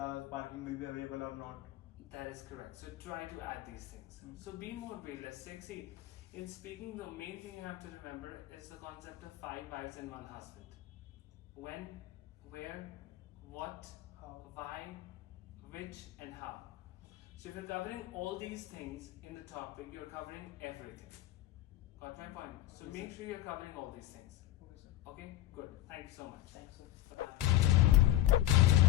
parking will be available or not. That is correct. So try to add these things. So be more realistic. See, in speaking, the main thing you have to remember is the concept of 5 wives and 1 husband. When, where, what, How? why, which, and how. So if you're covering all these things in the topic, you're covering everything. Got my point? So Okay, make sir. sure you're covering all these things. Okay, sir. Okay, good. Thank you so much. Thanks, sir. Bye-bye.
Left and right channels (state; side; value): quieter; right; 14.2 dB